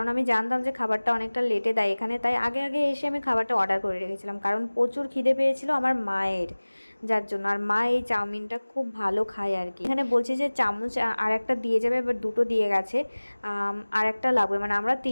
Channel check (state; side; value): inverted; both; correlation -1.00